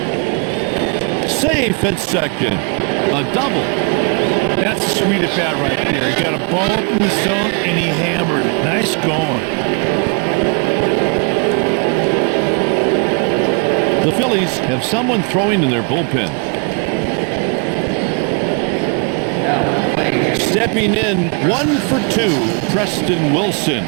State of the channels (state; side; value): quieter; left; 37.1 dB